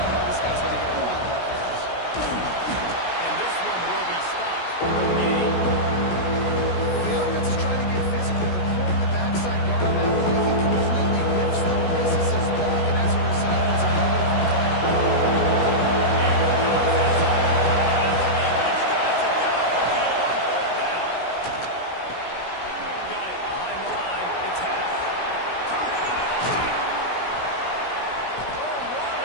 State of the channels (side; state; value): right; late; 16 ms